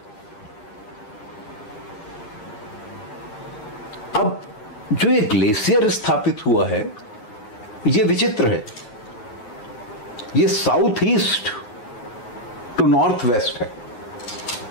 अब जो ये ग्लेशियर स्थापित हुआ है ये विचित्र है, ये south east to north west है,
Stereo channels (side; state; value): right; late; 9.4 ms